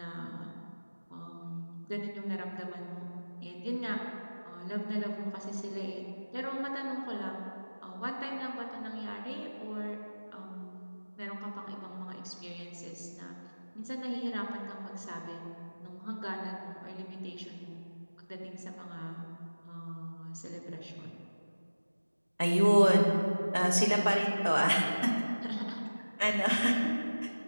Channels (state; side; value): inverted; both; correlation -1.00